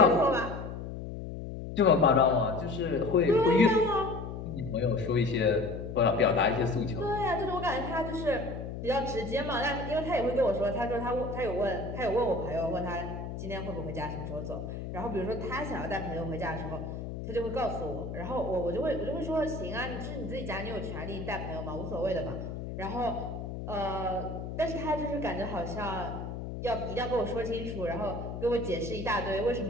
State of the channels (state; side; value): noise; left; hum, 7 dB below the sound